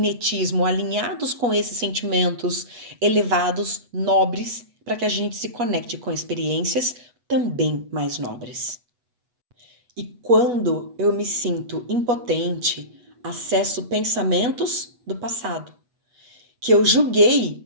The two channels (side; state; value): left; late; 8.1 ms